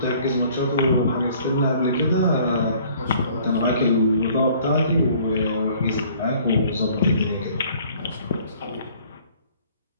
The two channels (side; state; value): both; inverted; correlation -0.56